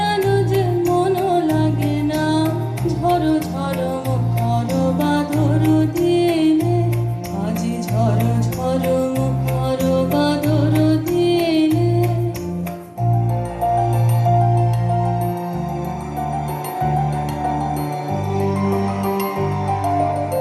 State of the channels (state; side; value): identical; both; correlation 1.00